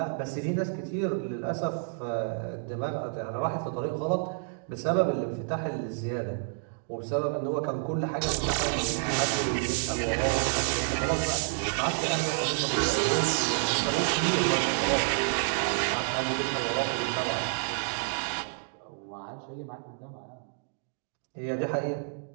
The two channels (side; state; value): left; silent; digital silence